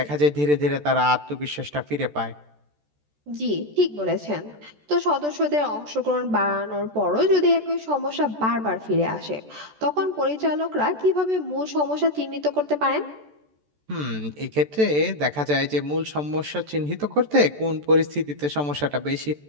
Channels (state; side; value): late; left; 14 ms